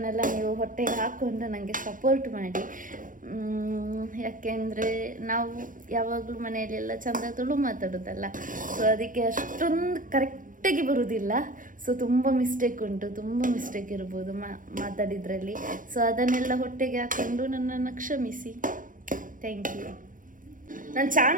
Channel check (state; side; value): late; left; 0.39 ms